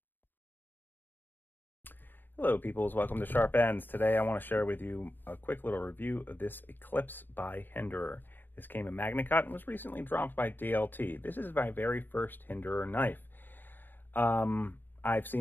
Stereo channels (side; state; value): right; late; 0.092 ms